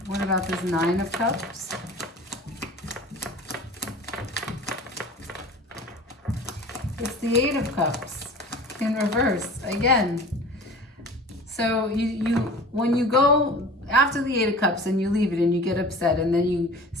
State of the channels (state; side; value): normal; both; correlation 0.40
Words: What about this Nine of Cups? It's the Eight of Cups in reverse again. So when you go after the Eight of Cups and you leave it and you get upset and then you